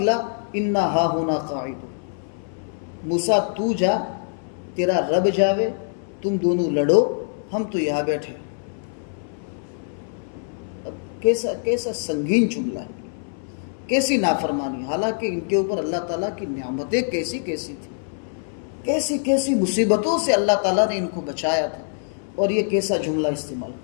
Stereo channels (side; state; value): right; silent; 60 dB below the other